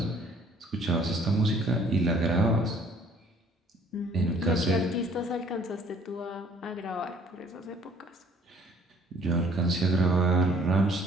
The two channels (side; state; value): both; normal; correlation 0.58